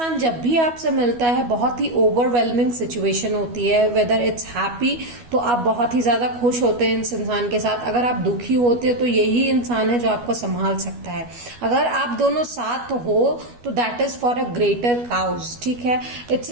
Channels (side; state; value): left; late; 12 ms